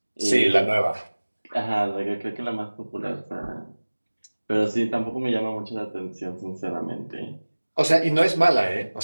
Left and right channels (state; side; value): inverted; both; correlation -1.00